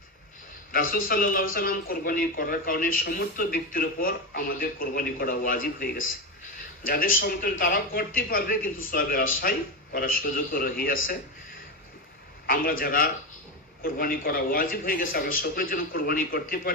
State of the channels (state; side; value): normal; both; correlation 0.14